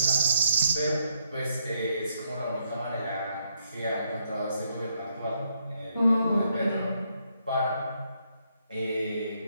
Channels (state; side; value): inverted; both; correlation -0.76